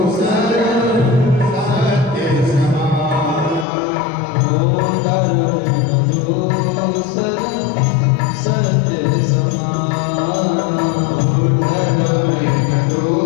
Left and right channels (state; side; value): drops out; right; at 3.7 s